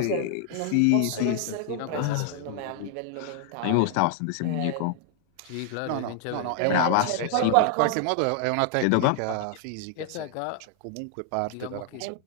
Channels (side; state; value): both; different; correlation 0.00